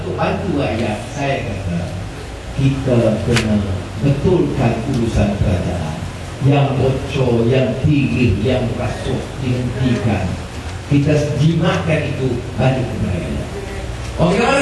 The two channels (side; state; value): both; identical; correlation 1.00